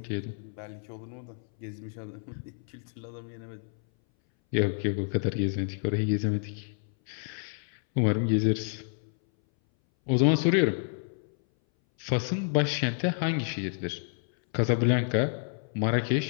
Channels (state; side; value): silent; right; 58 dB below the other